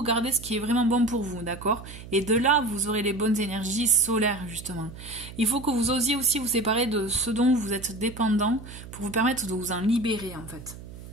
Gardez ce qui est vraiment bon pour vous, d'accord? Et de là, vous aurez les bonnes énergies solaires, justement. Il faut que vous osiez aussi vous séparer de ce dont vous êtes dépendant pour vous permettre de vous en libérer, en fait.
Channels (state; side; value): noise; right; hum, 15 dB below the sound